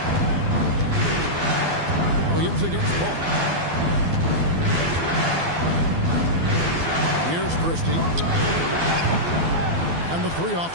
Williams against Paul. Here's Christie. And the 3 off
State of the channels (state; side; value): late; left; 12 ms